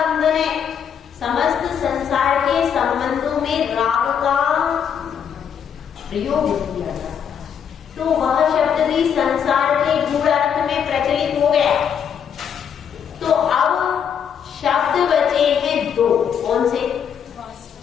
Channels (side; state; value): right; quieter; 8.0 dB